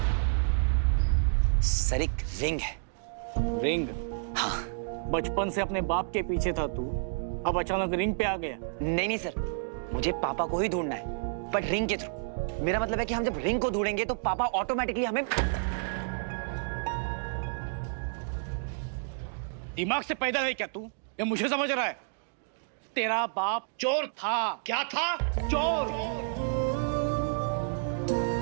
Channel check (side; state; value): left; silent; digital silence